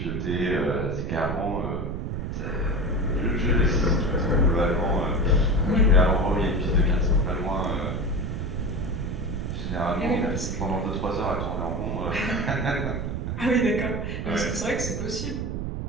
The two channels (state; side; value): noise; right; rumble, 3 dB below the sound